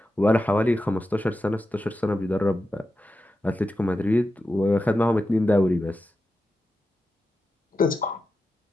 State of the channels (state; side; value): normal; both; correlation 0.90